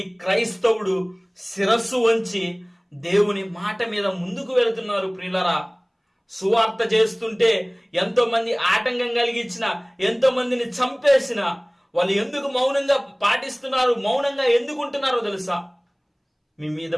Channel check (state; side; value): identical; both; correlation 1.00